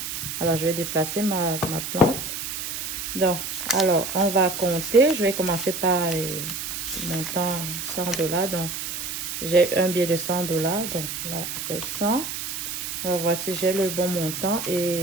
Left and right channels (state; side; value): noise; right; hiss, 5 dB below the sound